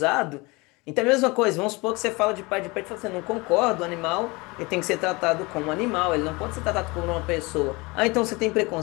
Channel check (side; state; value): right; quieter; 25.2 dB